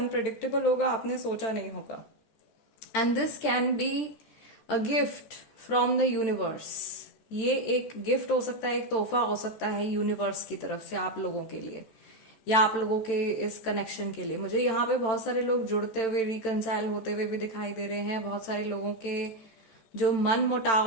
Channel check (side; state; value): right; late; 13 ms